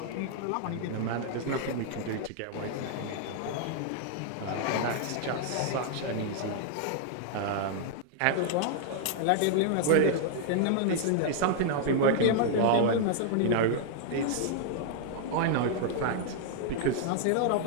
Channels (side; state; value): both; different; correlation -0.01